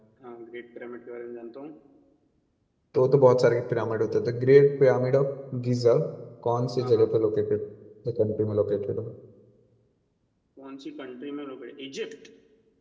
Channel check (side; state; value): both; identical; correlation 1.00